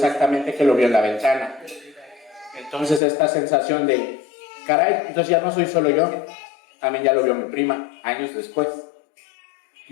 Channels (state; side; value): drops out; right; at 3.0 s